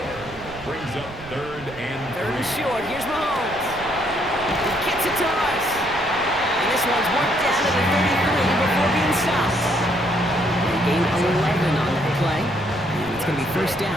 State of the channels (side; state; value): right; noise; rumble, 17 dB below the sound